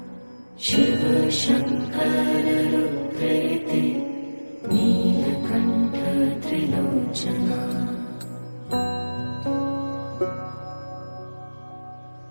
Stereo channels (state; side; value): inverted; both; correlation -1.00